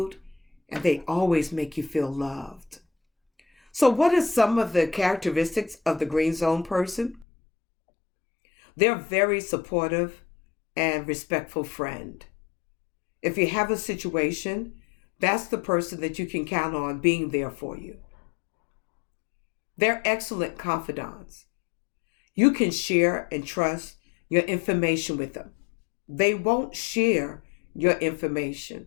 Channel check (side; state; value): right; drops out; at 7.2 s